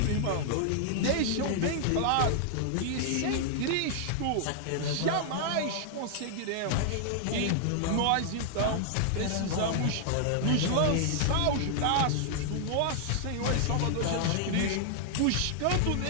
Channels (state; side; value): different; both; correlation -0.01